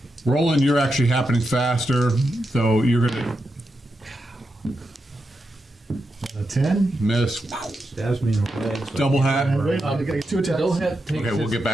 Roland, you're actually happening faster, so you're going A 10? to miss. Stabs me in the leg. so- Double hat. Wait, I got 2 attacks. Dolehead takes Okay, we'll his- get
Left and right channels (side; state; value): both; normal; correlation 0.87